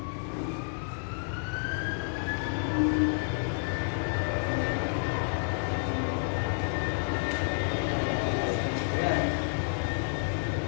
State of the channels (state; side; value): silent; right; 58 dB below the other